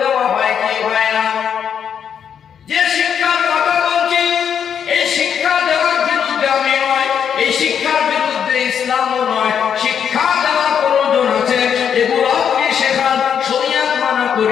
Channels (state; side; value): quieter; right; 8.0 dB